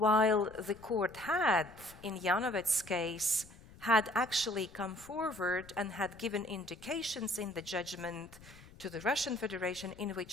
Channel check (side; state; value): left; noise; rumble, 21 dB below the sound